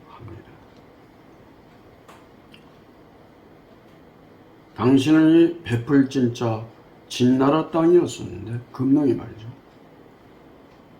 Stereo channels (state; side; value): identical; both; correlation 1.00